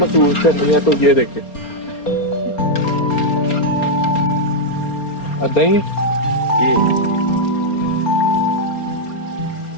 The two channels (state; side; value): late; right; 4.3 ms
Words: करनी है तो ये देखे दही ਜੀ